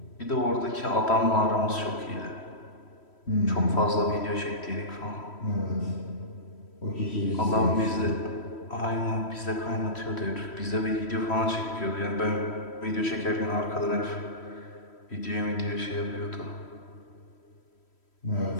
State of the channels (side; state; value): right; late; 3.1 ms